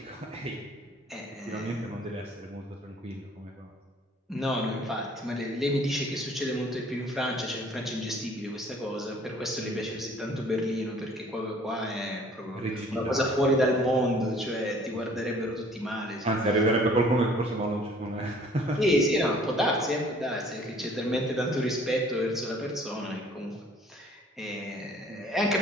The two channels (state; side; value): normal; both; correlation 0.55